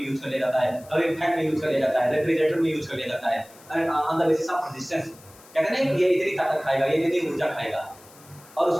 कर लिया जाता है, कभी फैन में यूज कर लिया जाता है, रेफ्रिजरेटर में यूज कर लिया जाता है। On the basis of resistance कहते हैं ये इतनी ताकत खाएगा, ये इतनी ऊर्जा खाएगा, और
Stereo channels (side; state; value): left; noise; hiss, 24 dB below the sound